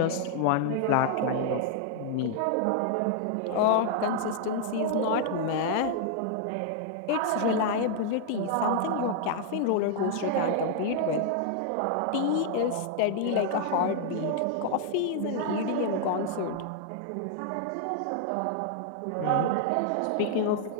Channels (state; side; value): different; both; correlation 0.00